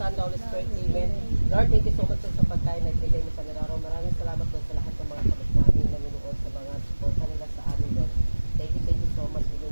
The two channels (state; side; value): inverted; both; correlation -1.00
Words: the Holy Spirit, Amen. Lord, thank you so much sa pagkain na ibigay mo sa araw. Maraming salamat po sa lahat ng mga kabas namin nanonood sa mga suporta nila sa amin, Lord. Thank you so much. Bigyan